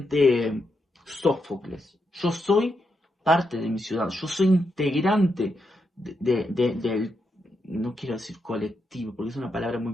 Sófocles, yo soy parte de mi ciudad, yo soy integrante del, no quiero decir colectivo, porque es una palabra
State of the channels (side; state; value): both; normal; correlation 0.83